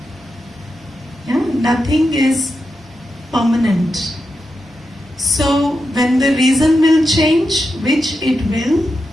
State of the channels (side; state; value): both; normal; correlation 0.88